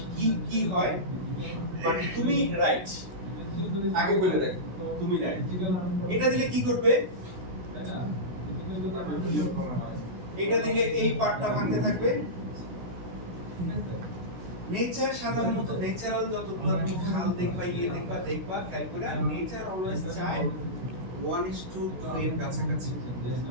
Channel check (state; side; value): late; left; 16 ms